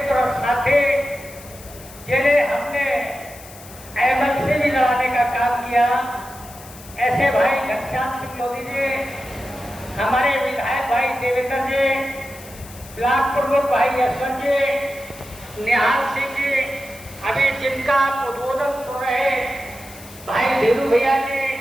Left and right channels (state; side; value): noise; left; hiss, 18 dB below the sound